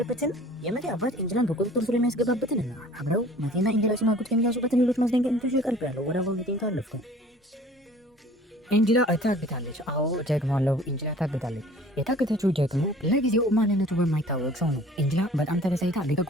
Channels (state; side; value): normal; both; correlation 0.49